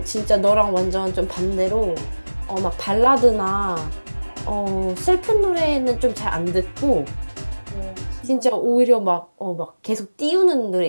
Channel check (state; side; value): inverted; both; correlation -1.00